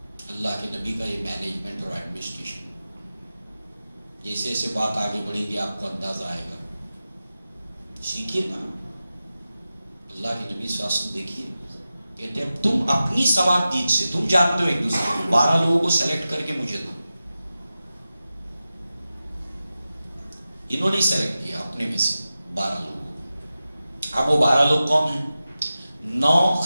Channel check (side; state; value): both; inverted; correlation -0.94